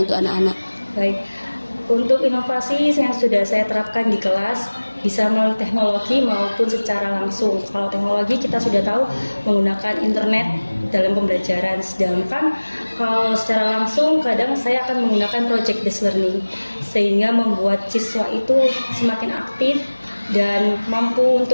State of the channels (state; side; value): inverted; both; correlation -1.00